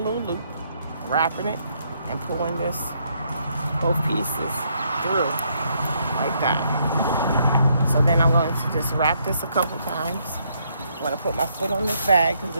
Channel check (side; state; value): both; inverted; correlation -0.73